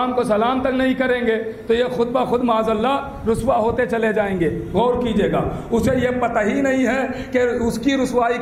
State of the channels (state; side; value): identical; both; correlation 1.00